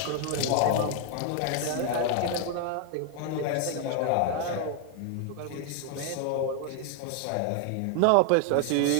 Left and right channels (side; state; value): both; different; correlation 0.00